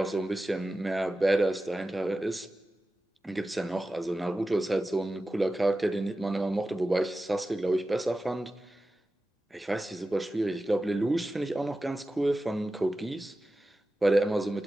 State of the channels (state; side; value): normal; both; correlation 0.94